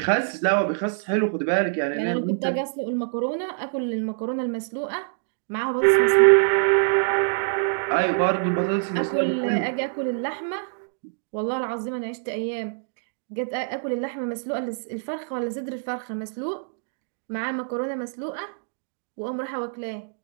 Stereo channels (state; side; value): silent; left; digital silence